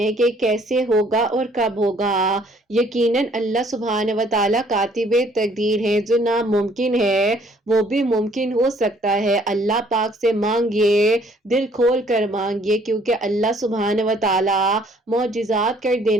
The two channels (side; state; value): both; normal; correlation 0.61